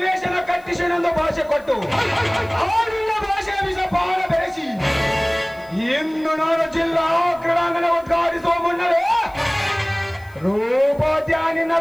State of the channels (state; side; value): noise; left; hiss, 30 dB below the sound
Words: ಕಟ್ಟಿಸಿನೆಂದು ಭಾಷೆ ಕೊಟ್ಟು ಆಡಿನ ಭಾಷೆಯ ವಿಷ ಪಾಲ ಬೆರೆಸಿ ಇಂದು ನಾನು ಜಿಲ್ಲಾ ಕ್ರೀಡಾಂಗಣ ಉದ್ಘಾಟಿಸುವ ಮುನ್ನವೇ ರೂಪದ್ಯಾನಿನ